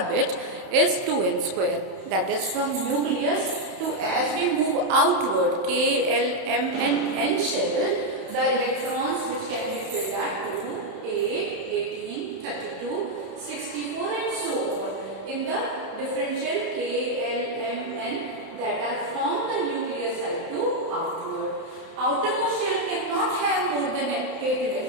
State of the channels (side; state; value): left; late; 31 ms